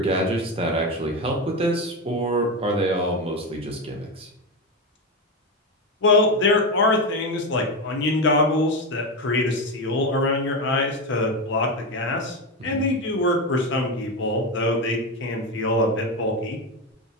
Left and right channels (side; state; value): both; normal; correlation 0.14